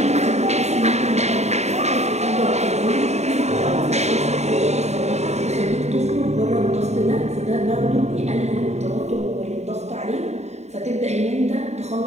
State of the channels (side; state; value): left; late; 0.32 ms